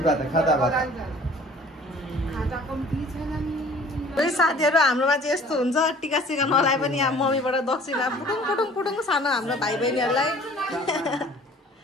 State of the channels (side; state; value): both; normal; correlation 0.50